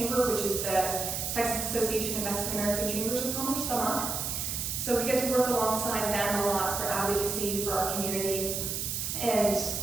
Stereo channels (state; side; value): noise; right; hiss, 2 dB below the sound